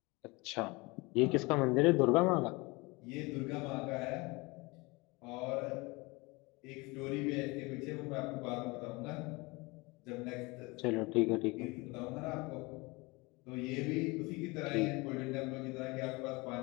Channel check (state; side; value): quieter; right; 25.1 dB